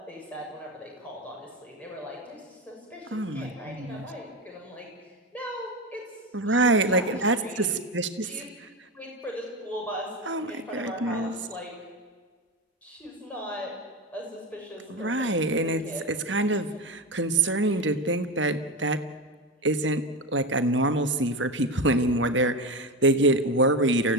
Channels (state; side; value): normal; both; correlation 0.18